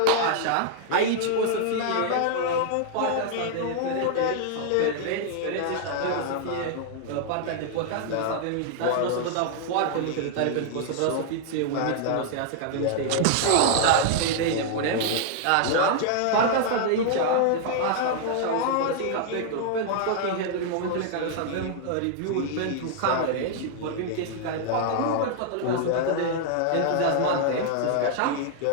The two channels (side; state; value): both; different; correlation -0.01